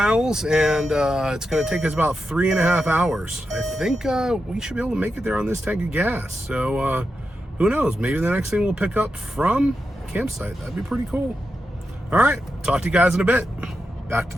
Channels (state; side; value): normal; both; correlation 0.88